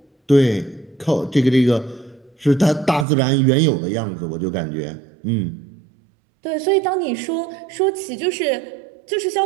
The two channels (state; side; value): drops out; left; at 3.1 s